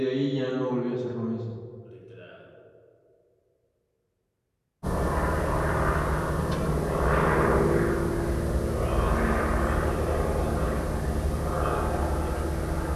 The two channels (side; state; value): both; identical; correlation 1.00